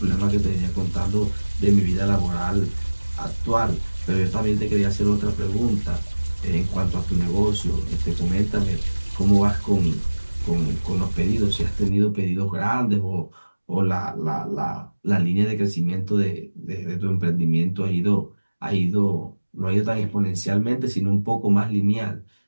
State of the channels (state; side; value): inverted; both; correlation -1.00